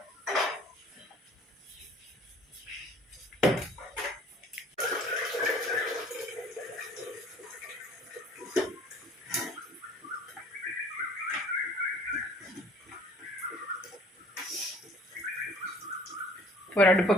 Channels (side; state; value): both; normal; correlation 0.53